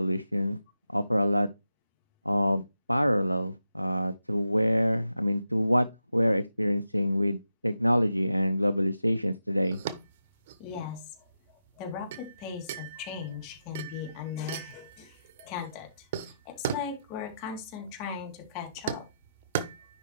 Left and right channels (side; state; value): both; inverted; correlation -0.88